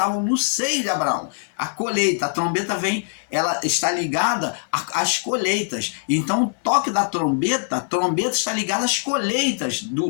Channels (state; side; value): silent; right; 59 dB below the other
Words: no seio de Abraão. A colheita, a trombeta vem, ela está ligada às colheitas. Então o toque da trombeta, a trombeta está ligada às colheitas